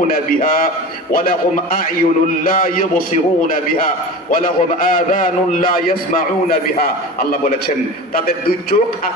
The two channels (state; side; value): normal; both; correlation 0.32